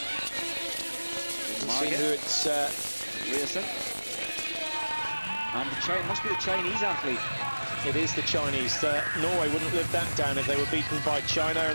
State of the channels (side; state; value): both; inverted; correlation -1.00